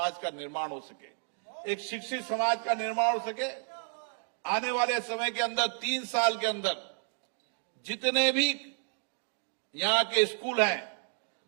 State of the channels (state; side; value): silent; left; 57 dB below the other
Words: का निर्माण हो सके, एक शिक्षित समाज का निर्माण हो सके। आने वाले समय के अंदर 3 साल के अंदर जितने भी यहाँ के स्कूल हैं,